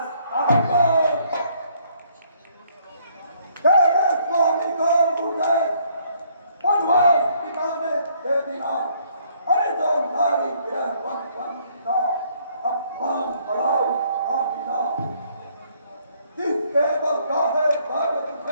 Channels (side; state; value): both; inverted; correlation -0.66